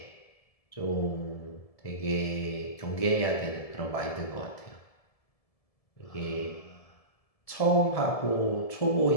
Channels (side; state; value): right; late; 1.7 ms